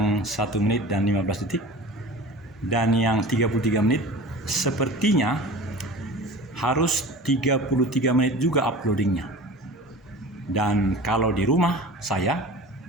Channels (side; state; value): both; normal; correlation 0.38